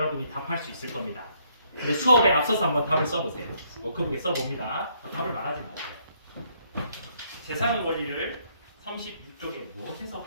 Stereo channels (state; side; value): inverted; both; correlation -0.69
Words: 답할 수 있을 겁니다. 근데 수업에 앞서서 한번 답을 써보세요. 워크북에 써봅니다. 답을 말하지 마세요. 세상의 원리를 36쪽에 무엇에서